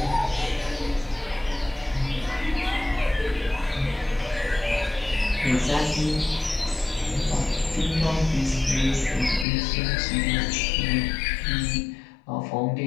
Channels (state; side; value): drops out; right; at 9.5 s